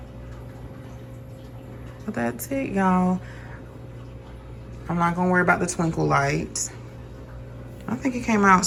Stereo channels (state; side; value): identical; both; correlation 1.00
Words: But that's it, y'all. I'm not gonna worry about the twinkle lights. I think it came out